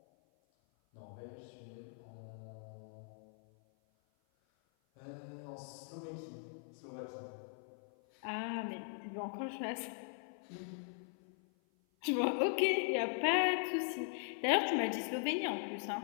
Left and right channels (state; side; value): silent; right; 51 dB below the other